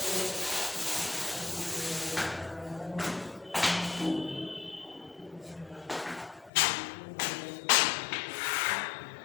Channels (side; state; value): right; drops out; at 6.5 s